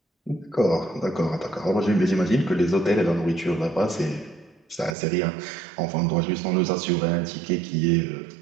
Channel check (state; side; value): drops out; left; at 5.0 s